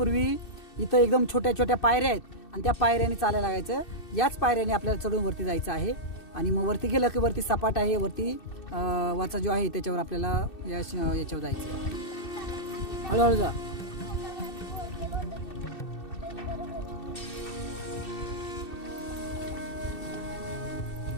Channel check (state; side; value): late; right; 2.7 ms